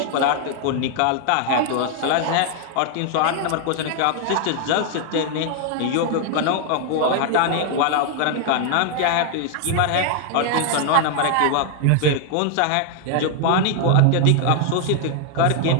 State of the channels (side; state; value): both; different; correlation 0.00